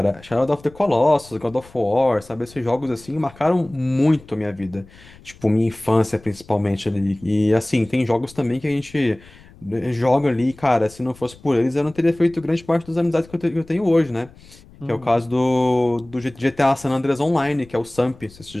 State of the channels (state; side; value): noise; left; rumble, 23 dB below the sound